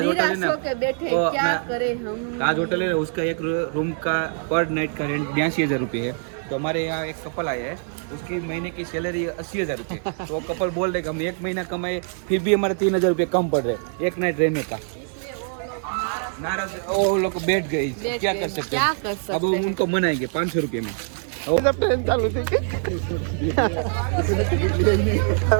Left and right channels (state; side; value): silent; left; 58 dB below the other